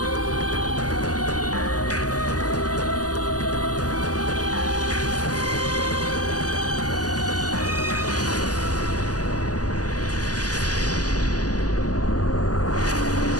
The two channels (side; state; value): right; late; 0.67 ms